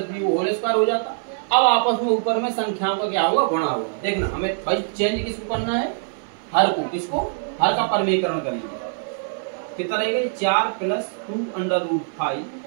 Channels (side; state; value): left; silent; 57 dB below the other